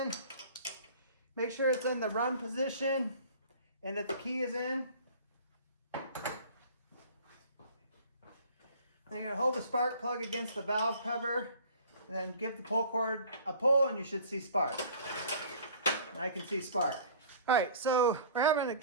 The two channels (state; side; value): inverted; both; correlation -0.48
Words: Make sure it's in the run position and that the key is in. Then you're going to hold the spark plug against the valve cover and then give the pull cord a pull and you should see spark. And I can see spark. All right, so we're having